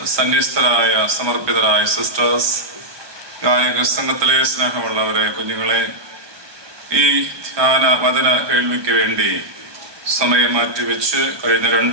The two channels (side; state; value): left; late; 1.2 ms